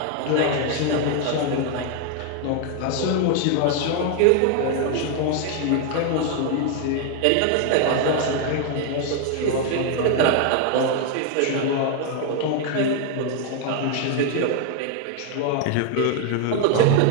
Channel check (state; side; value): different; both; correlation 0.00